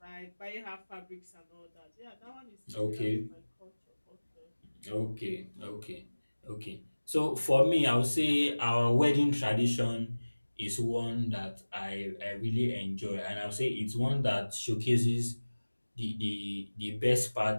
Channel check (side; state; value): both; inverted; correlation -1.00